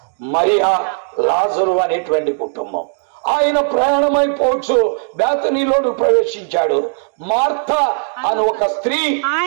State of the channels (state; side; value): silent; left; 66 dB below the other